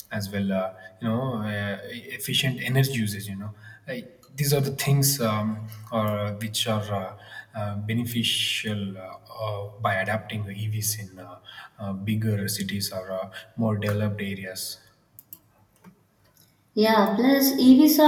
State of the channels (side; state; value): both; identical; correlation 1.00